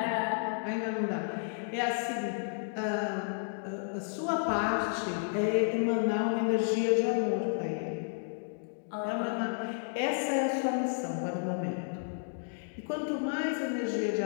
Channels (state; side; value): silent; right; digital silence